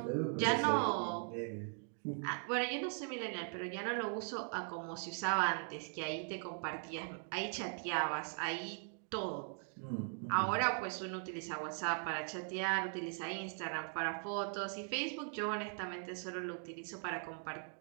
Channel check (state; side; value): silent; left; 51 dB below the other